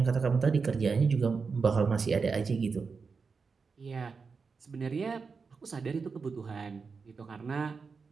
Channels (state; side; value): quieter; left; 5.0 dB